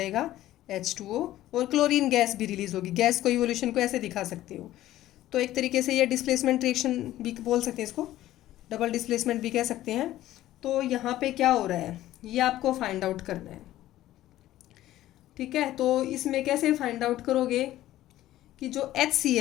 H2O, और क्लोरीन गैस भी रिलीज होगी। गैस को इवोल्यूशन को ऐसे दिखा सकते हो। तो एक तरीके से ये डिस्प्लेसमेंट रिएक्शन भी बोल सकते हैं, इसको डबल डिस्प्लेसमेंट भी कह सकते हैं। तो यहाँ पे क्या हो रहा है, ये आपको फाइंड आउट करना है। ठीक है, तो इसमें कैसे फाइंड आउट करोगे कि जो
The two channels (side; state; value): right; quieter; 14.4 dB